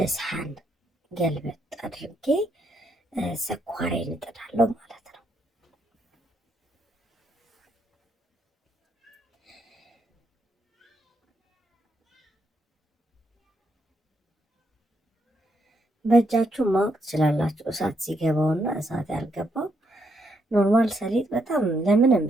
ሰሃን ገልበጥ አድርጌ ስኳሬን እጥዳለሁ ማለት ነው። በእጃችሁ ማወቅ ትችላላችሁ እሳት ሲገባውና እሳት ያልገባው። ኖርማል ሰሊጥ በጣም ለምንም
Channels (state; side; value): normal; both; correlation 0.77